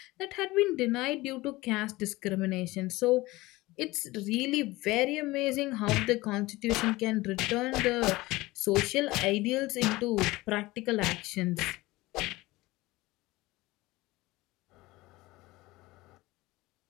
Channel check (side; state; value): right; quieter; 20.0 dB